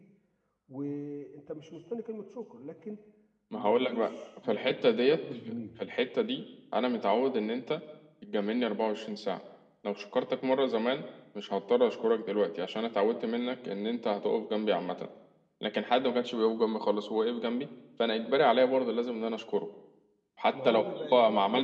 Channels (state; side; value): identical; both; correlation 1.00